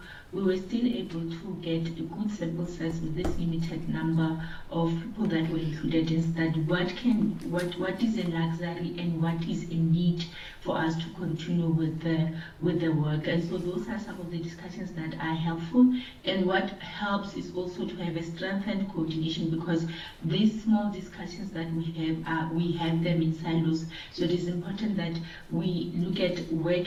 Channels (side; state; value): both; identical; correlation 1.00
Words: we were still able to get a good sample size with this limited number of people that were included and study what is a luxury and what is a need for us to continue with the work. And so those are some of the discussions that are helpful. And what helps is also to have a strengthened coordination, because these small discussions that we have them in silos. So it is important that we look at where